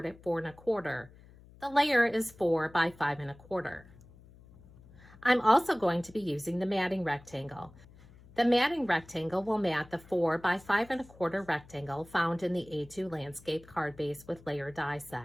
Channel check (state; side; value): noise; left; hum, 23 dB below the sound